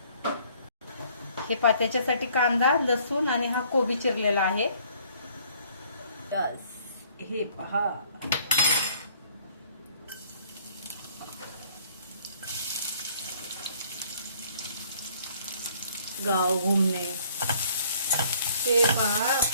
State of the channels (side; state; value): both; inverted; correlation -0.60